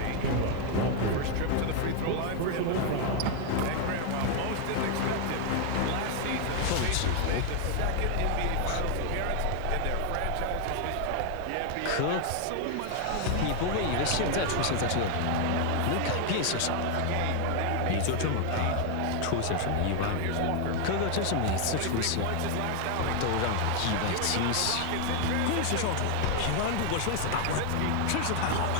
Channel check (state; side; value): different; both; correlation 0.00